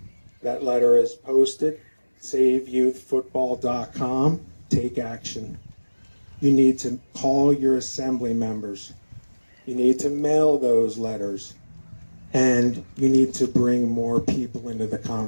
That letter is posted, saveyouthfootball.com. Take action. You need to call your assembly members. You need to mail those letters. And you need to bring more people into the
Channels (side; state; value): both; inverted; correlation -1.00